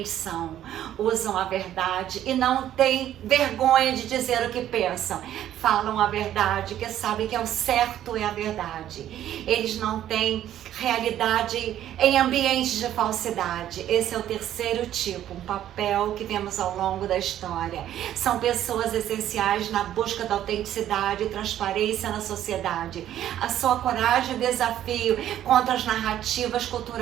são. Usam a verdade e não têm vergonha de dizer o que pensam. Falam a verdade, que sabem que é o certo é a verdade. Eles não têm realidade em ambientes de falsidade. Esse é o terceiro tipo, um papel que vemos ao longo da história. São pessoas essenciais na busca da autenticidade e transparência na sociedade. A sua coragem e desafio contra as narrativas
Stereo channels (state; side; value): quieter; left; 11.7 dB